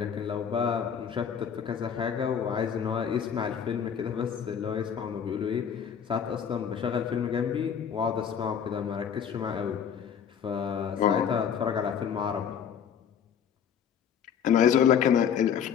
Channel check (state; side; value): quieter; right; 7.9 dB